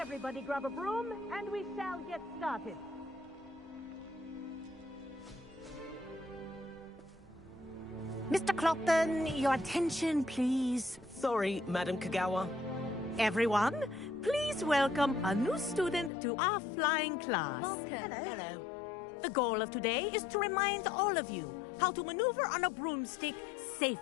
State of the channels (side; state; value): right; drops out; at 16.1 s